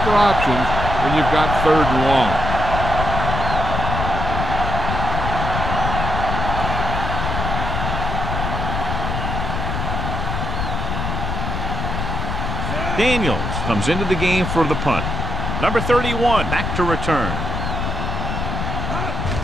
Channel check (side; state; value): left; noise; rumble, 2 dB below the sound